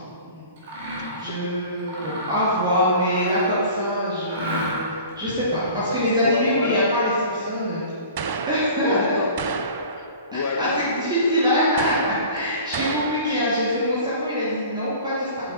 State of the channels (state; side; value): inverted; both; correlation -0.42